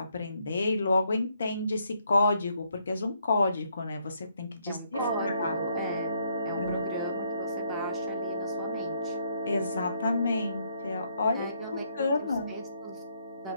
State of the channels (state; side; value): inverted; both; correlation -0.73